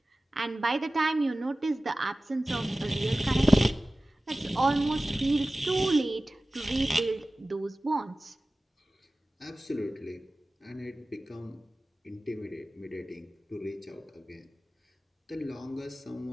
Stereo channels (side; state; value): both; normal; correlation 0.97